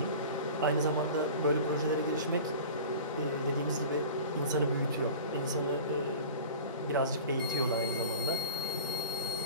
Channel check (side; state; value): both; inverted; correlation -0.39